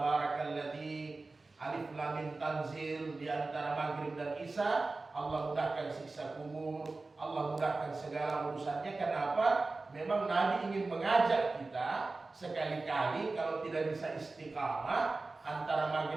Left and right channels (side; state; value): left; quieter; 3.5 dB